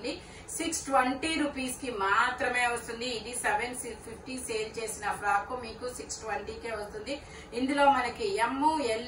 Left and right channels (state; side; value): identical; both; correlation 1.00